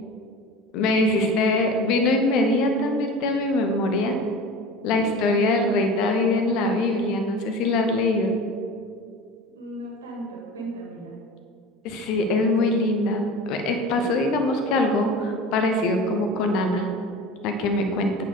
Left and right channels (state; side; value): normal; both; correlation 0.35